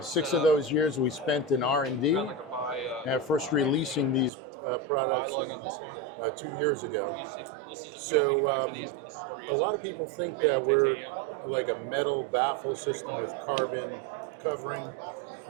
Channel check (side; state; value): left; drops out; at 4.3 s